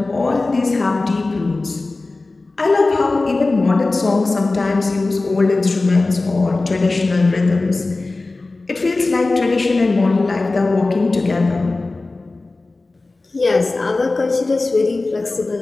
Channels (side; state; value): right; quieter; 3.3 dB